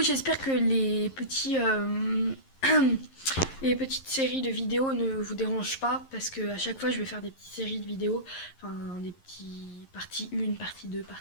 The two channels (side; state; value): right; late; 11 ms